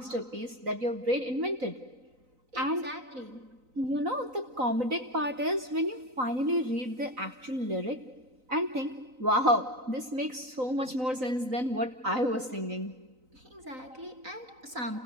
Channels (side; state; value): left; late; 3.9 ms